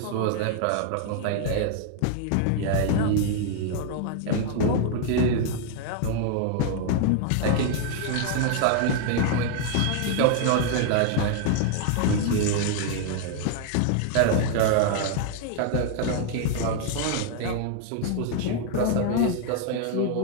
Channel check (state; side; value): different; both; correlation 0.00